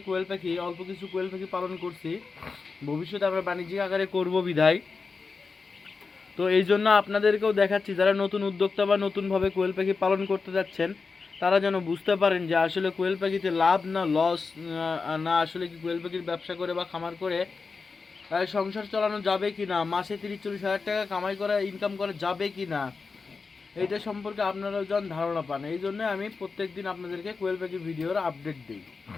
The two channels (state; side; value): quieter; right; 4.6 dB